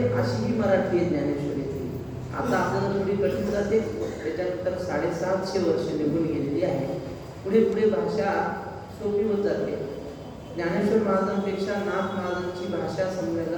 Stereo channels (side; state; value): both; identical; correlation 1.00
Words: अशी ही मराठी आहे ज्ञानेश्वरीची. आता आपल्याला थोडी कठीण जाते, त्याच्यानंतर 750 वर्ष निघून गेलेली आहे. पुढे पुढे भाषा सोपी होत जाते. ज्ञानेश्वर महाराजांपेक्षा नाथ महाराजांची भाषा